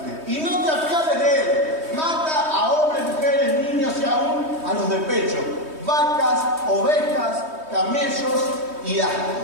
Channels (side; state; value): left; late; 3.2 ms